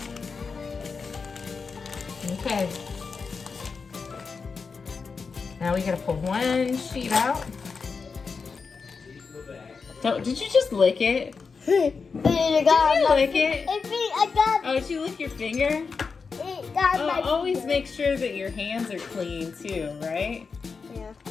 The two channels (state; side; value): quieter; right; 5.0 dB